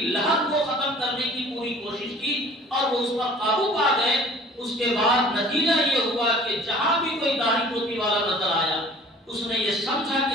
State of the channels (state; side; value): normal; both; correlation 0.49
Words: لہر کو ختم کرنے کی پوری کوشش کی اور وہ اس پر قابو پا گئے۔ اس کے بعد نتیجہ یہ ہوا کہ جہاں بھی کوئی داڑھی ٹوپی والا نظر آیا اس نے یہ سمجھا